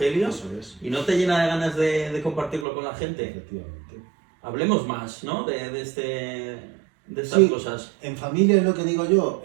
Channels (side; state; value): left; drops out; at 2.7 s